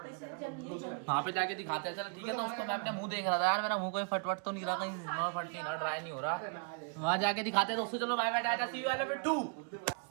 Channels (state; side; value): quieter; left; 37.9 dB